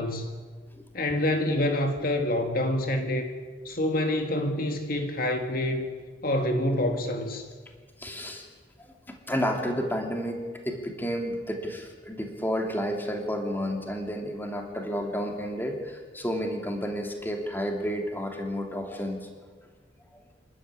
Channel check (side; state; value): both; normal; correlation 0.55